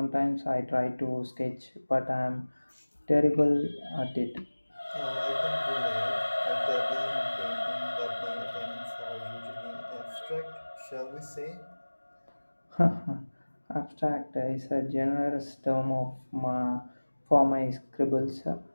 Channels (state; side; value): inverted; both; correlation -1.00